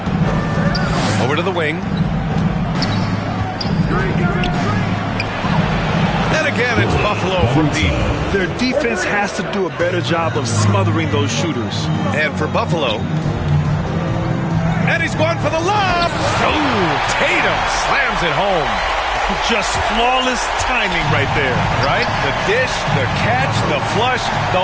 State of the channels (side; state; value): both; identical; correlation 1.00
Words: Over to the wing. And again, it's Buffalo from deep. Their defense has to do a better job of smothering those shooters. And for Buffalo, and he's going for the lob. Oh, Tatum slams it home. Just flawless timing right there. Right? The dish, the catch, the flush,